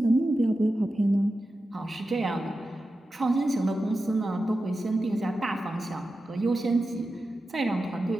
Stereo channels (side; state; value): both; normal; correlation 0.92